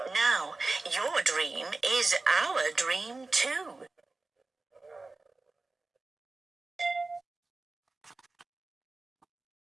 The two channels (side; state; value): left; quieter; 3.5 dB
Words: Now, your dream is our dream too."